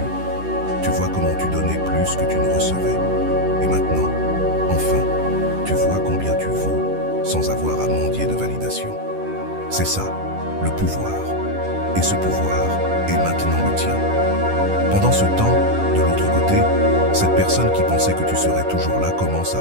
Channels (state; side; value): late; left; 10 ms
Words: Tu vois comment tu donnais plus que tu ne recevais. Et maintenant, enfin, tu vois combien tu vaux sans avoir à mendier de validation. C'est ça, le pouvoir. Et ce pouvoir est maintenant le tien. Pendant ce temps, de l'autre côté, cette personne qui pensait que tu serais toujours là commence